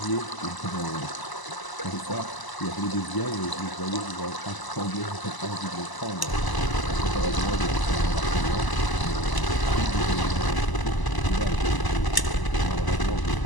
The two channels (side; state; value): right; late; 1.0 ms